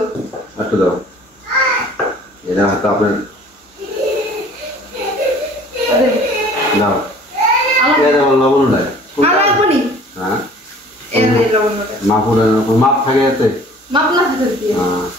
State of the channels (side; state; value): both; normal; correlation 0.50